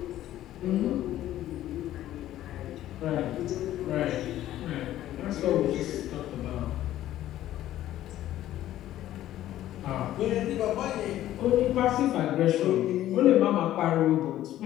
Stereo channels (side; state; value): right; quieter; 13.4 dB